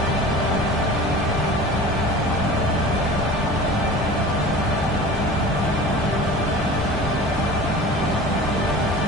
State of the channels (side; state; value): both; normal; correlation 0.38